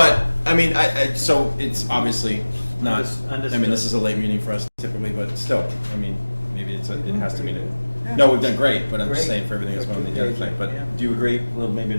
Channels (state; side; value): inverted; both; correlation -1.00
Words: I mean, so it's obviously not, Understood. I mean, this is a late meeting for us typically, but still, I mean, maybe it has to be, no, we've done great, but I'm just saying for everything that's going on the other thing. But do you agree, well, maybe